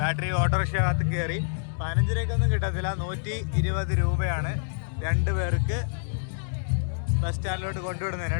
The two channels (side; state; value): right; silent; digital silence